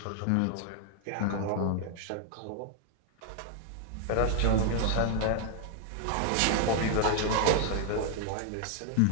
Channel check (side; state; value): both; different; correlation 0.00